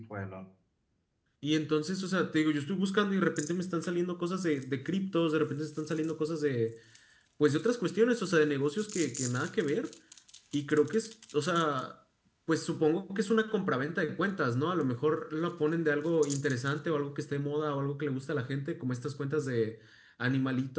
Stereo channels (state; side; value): identical; both; correlation 1.00